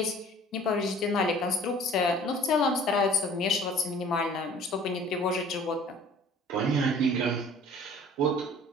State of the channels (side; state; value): both; normal; correlation 0.49